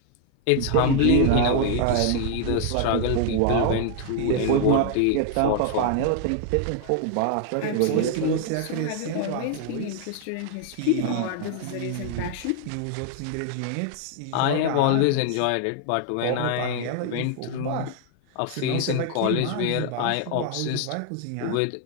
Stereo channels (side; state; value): both; different; correlation 0.00